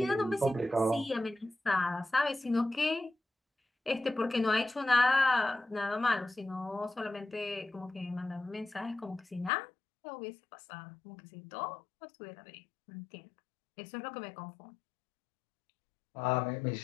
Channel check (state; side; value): drops out; right; at 9.5 s